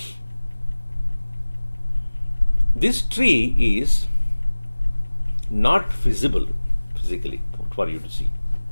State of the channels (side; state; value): both; inverted; correlation -1.00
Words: This tree is not visible physically for you to see.